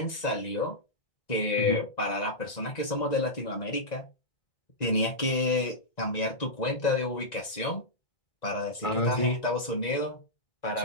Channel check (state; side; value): late; right; 1.9 ms